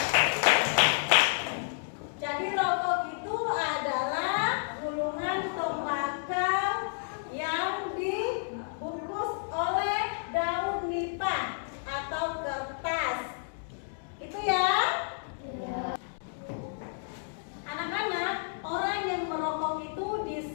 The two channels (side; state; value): right; silent; digital silence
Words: Jadi rokok itu adalah gulungan tembakau yang dibungkus oleh daun nipah atau kertas. Itu ya. Anak-anak, orang yang merokok itu